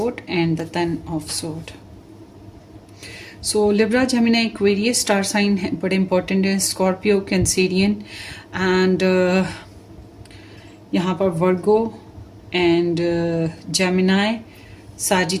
and the 10 of Sword. So Libra, Gemini, Aquarius star sign है, बड़े important है, Scorpio, Cancerian and यहाँ पर Virgo and Gemini,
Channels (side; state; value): both; identical; correlation 1.00